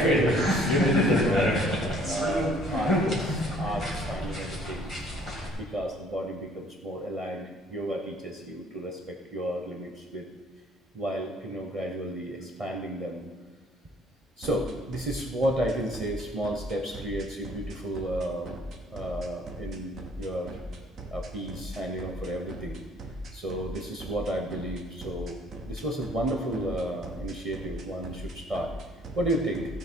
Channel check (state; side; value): normal; both; correlation 0.58